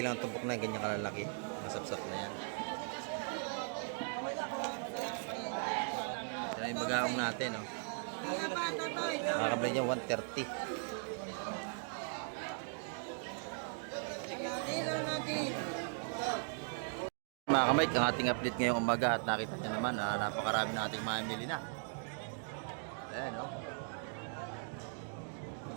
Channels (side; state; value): left; silent; 52 dB below the other